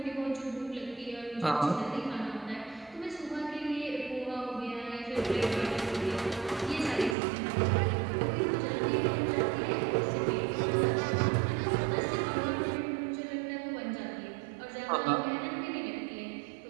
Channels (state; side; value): drops out; left; at 7.2 s